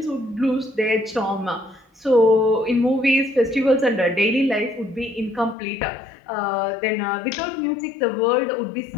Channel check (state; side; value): drops out; right; at 5.6 s